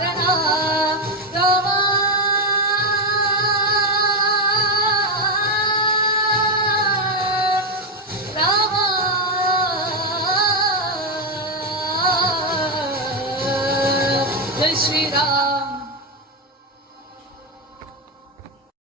ರಾಮ ರಾಮ ಜೈ ಶ್ರೀರಾಮ.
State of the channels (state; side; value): normal; both; correlation 0.06